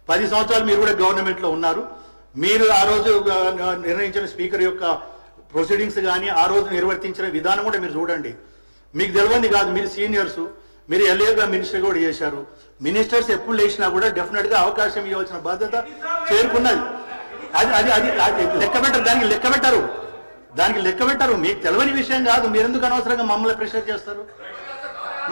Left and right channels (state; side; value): inverted; both; correlation -1.00